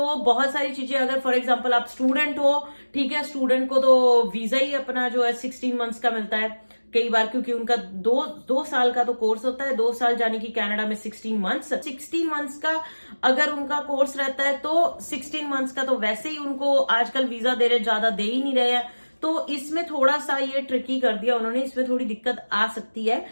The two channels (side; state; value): both; inverted; correlation -1.00